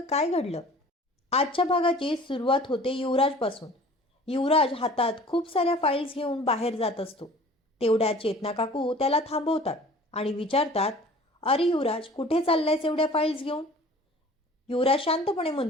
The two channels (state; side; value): normal; both; correlation 0.46